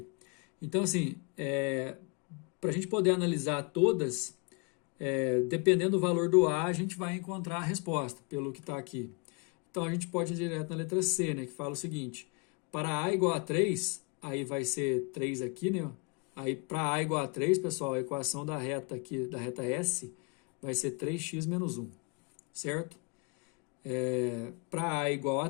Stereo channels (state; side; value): quieter; right; 33.0 dB